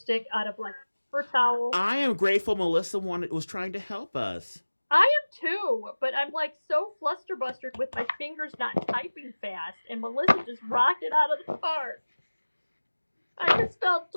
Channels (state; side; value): inverted; both; correlation -1.00